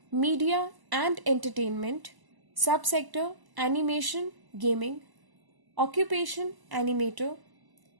Media and Entertainment. Subsector: Animation, Gaming. Occupation: Animator.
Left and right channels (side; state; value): left; late; 1.0 ms